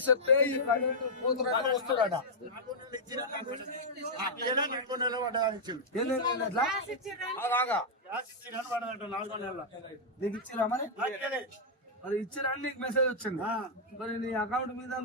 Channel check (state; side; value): normal; both; correlation -0.07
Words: ఈ కరెంటు పోతున్నట్టు వస్తున్నాడట. నాకు నెల పడ్డదని ఇచ్చింది. ఎన్ని ఎట్లా అలాగా గ్యాస్ ఇచ్చిన పడదంట 4 నెలల. నీకు ఇచ్చిరా మరి నాకేలే. మరి ఇచ్చిరా అని నీకు మెసేజ్ వచ్చింది. మరి నీ అకౌంట్ మీద